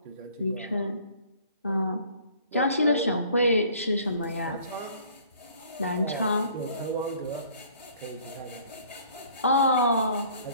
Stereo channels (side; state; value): both; inverted; correlation -0.55